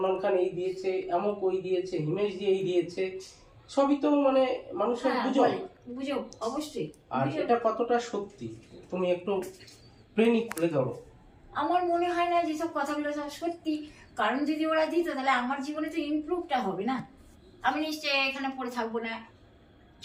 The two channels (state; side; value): identical; both; correlation 1.00